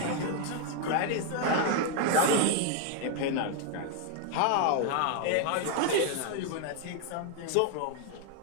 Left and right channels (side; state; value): both; different; correlation 0.00